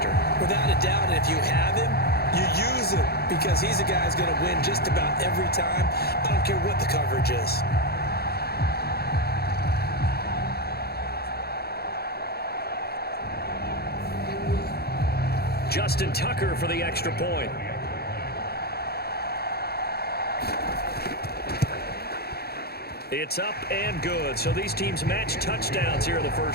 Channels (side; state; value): right; late; 0.46 ms